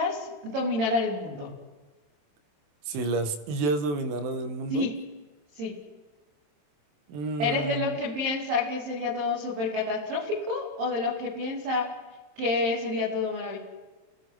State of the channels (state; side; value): late; left; 27 ms